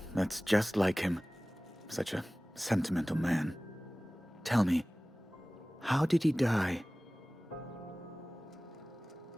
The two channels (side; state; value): both; normal; correlation 0.98